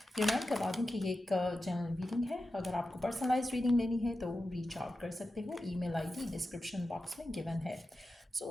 रिमाइंड करवा दूँ कि ये एक जनरल रीडिंग है। अगर आपको पर्सनलाइज रीडिंग लेनी है तो रीच आउट कर सकते हो। ईमेल आईडी डिस्क्रिप्शन बॉक्स में गिवन है।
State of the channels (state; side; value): normal; both; correlation 0.92